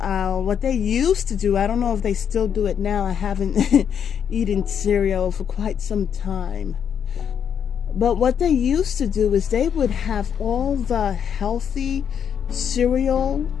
aisle, what they used to do, I don't know if they still do it now. I haven't eaten cereal for quite some time. But what they used to do is they would have all the healthy cereal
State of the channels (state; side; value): quieter; right; 8.1 dB